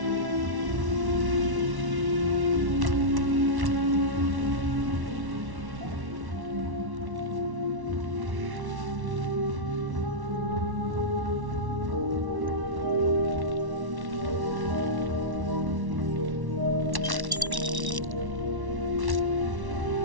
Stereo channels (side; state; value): left; late; 1.1 ms